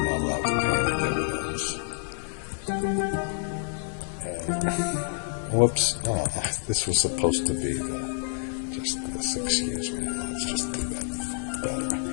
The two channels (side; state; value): right; silent; 59 dB below the other